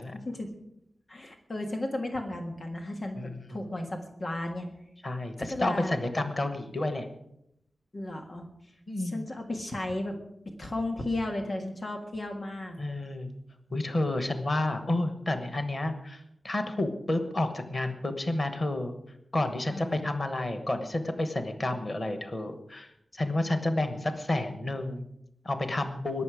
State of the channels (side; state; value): both; normal; correlation 0.95